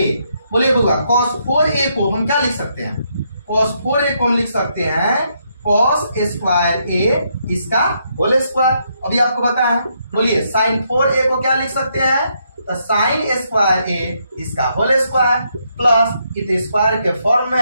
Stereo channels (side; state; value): both; inverted; correlation -0.76